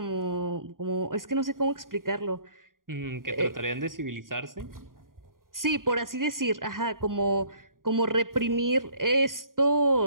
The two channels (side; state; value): left; late; 0.90 ms